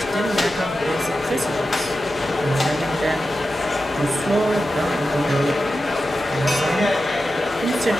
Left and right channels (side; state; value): both; normal; correlation 0.91